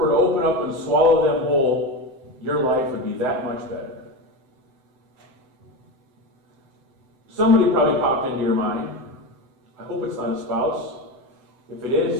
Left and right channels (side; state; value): left; late; 7.9 ms